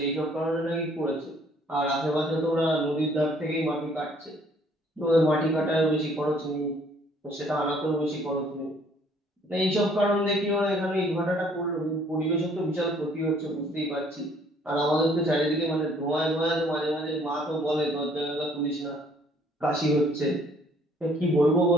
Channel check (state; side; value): normal; both; correlation 0.61